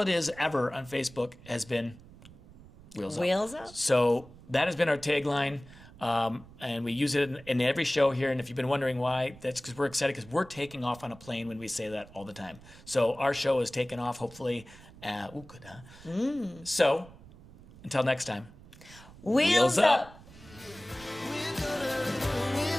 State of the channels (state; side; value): noise; right; rumble, 21 dB below the sound